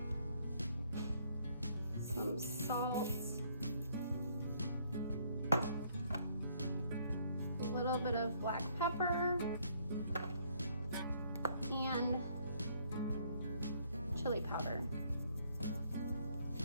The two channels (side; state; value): both; inverted; correlation -0.66